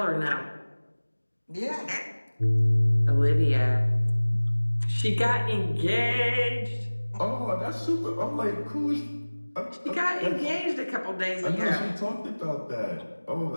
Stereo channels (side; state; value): both; inverted; correlation -1.00